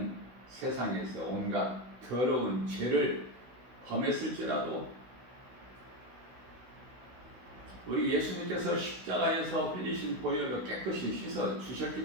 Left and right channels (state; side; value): late; left; 16 ms